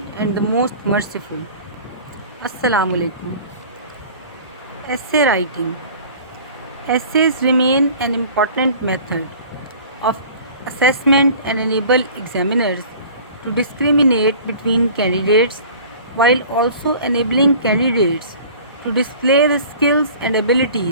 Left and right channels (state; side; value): inverted; both; correlation -0.45